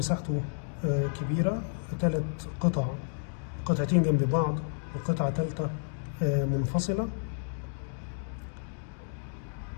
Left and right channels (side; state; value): right; silent; digital silence